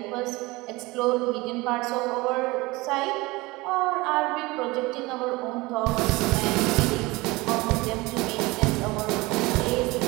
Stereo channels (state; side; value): quieter; left; 22.2 dB